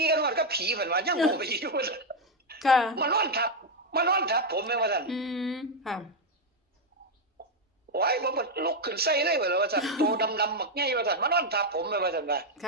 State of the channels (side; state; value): both; normal; correlation 0.02